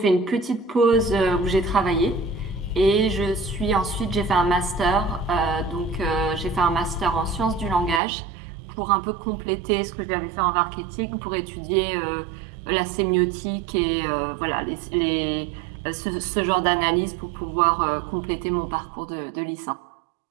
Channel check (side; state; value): left; drops out; at 8.0 s